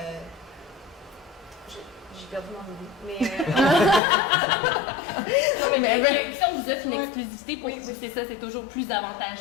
j'ai perdu mon idée. Si on vous offre une exclusivité pour vous, c'est ça, c'est toujours plus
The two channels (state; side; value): drops out; right; at 4.0 s